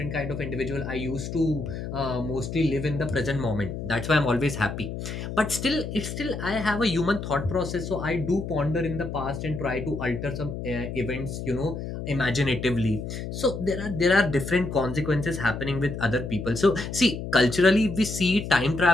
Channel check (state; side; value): noise; left; hum, 6 dB below the sound